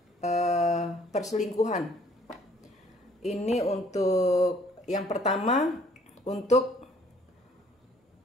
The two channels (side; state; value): both; normal; correlation 0.60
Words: perselingkuhan. Ini untuk yang pertama, untuk